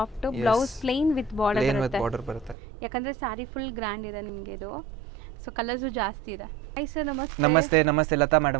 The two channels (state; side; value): drops out; left; at 2.6 s